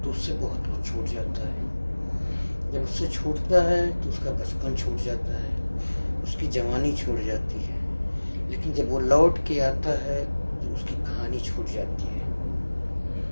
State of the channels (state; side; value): inverted; both; correlation -1.00